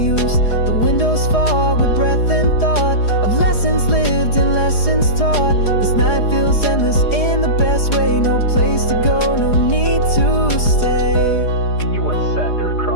The windows fog with breath and thought of lessons lived and lessons taught. This night feels endless in the best way, no place to go, no need to stay. You once sat there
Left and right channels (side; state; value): right; late; 4.8 ms